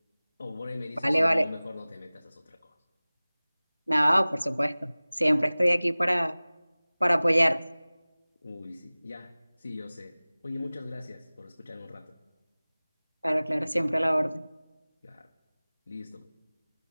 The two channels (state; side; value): inverted; both; correlation -0.99